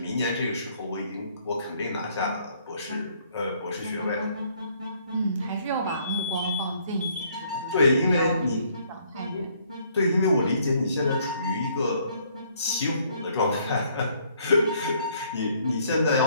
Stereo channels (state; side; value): inverted; both; correlation -0.65